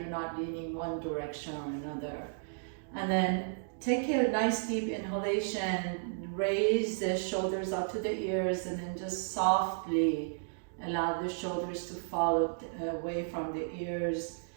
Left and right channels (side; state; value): left; silent; digital silence